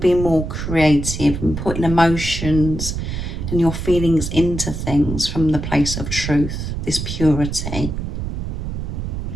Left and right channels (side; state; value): right; noise; rumble, 5 dB below the sound